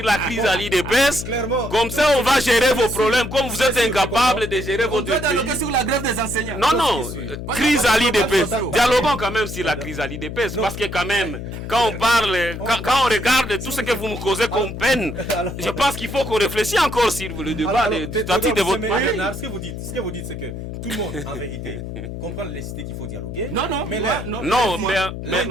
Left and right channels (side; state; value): left; noise; hum, 8 dB below the sound